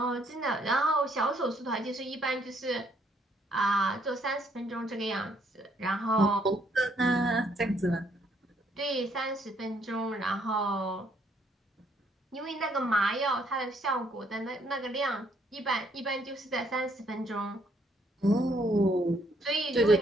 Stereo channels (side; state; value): both; normal; correlation 0.69